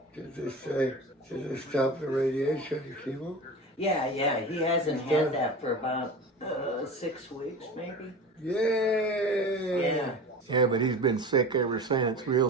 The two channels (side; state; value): both; normal; correlation 0.33